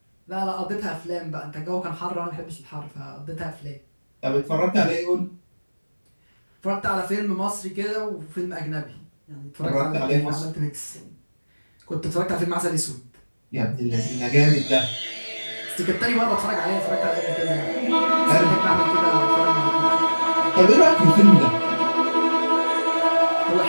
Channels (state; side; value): inverted; both; correlation -1.00